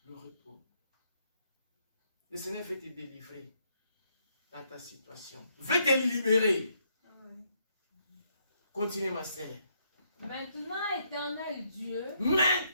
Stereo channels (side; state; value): both; inverted; correlation -0.73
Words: le repos? Le Seigneur veut te délivrer dans ta situation. Veut te libérer. Continue ma sœur. Maintenant, éternel Dieu,